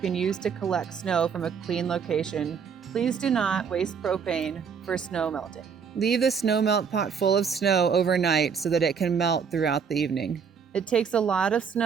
use to collect snow from a clean location. Please do not waste propane for snow melting. Leave the snow melt pot full of snow overnight so that it can melt throughout the evening. It takes a lot of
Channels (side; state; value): left; quieter; 6.5 dB